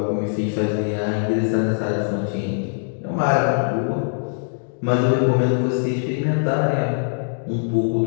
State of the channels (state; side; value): silent; right; digital silence